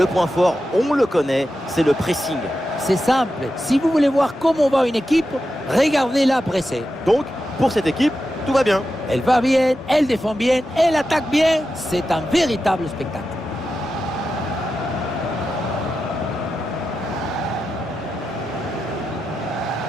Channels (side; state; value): both; normal; correlation 0.90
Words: point fort, on le connaît, c'est le pressing. C'est simple. Si vous voulez voir comment va une équipe, regardez-la presser. Donc, pour cette équipe, tout va bien. Elle va bien, elle défend bien, elle attaque bien. C'est un véritable spectacle.